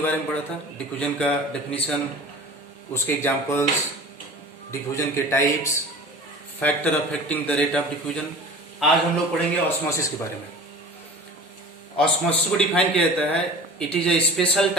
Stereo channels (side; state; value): both; normal; correlation 0.39